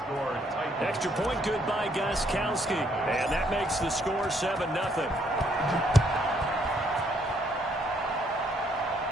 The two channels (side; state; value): both; normal; correlation 0.70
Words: Extra point good by Gostkowski. And that makes the score 7-0.